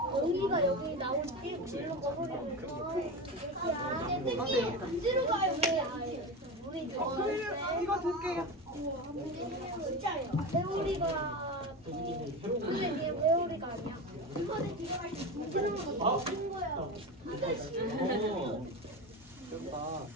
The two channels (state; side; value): normal; both; correlation 0.23